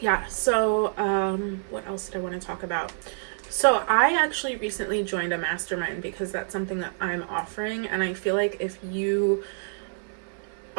so what else did I want to talk about? So I actually recently joined a mastermind because that's something that I'm offering, and I feel like if you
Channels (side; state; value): left; silent; 60 dB below the other